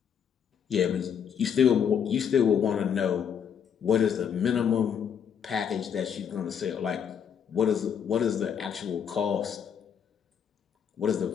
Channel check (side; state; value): right; quieter; 7.9 dB